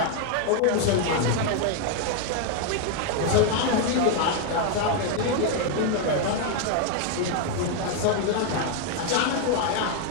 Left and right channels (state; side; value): different; both; correlation 0.00